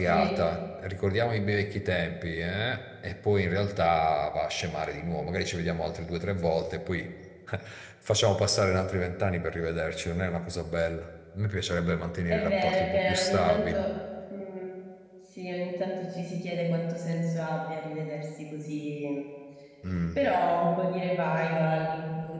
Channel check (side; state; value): both; identical; correlation 1.00